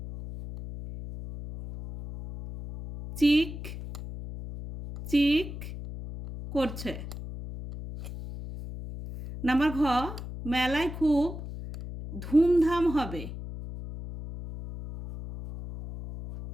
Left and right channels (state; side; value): noise; left; hum, 10 dB below the sound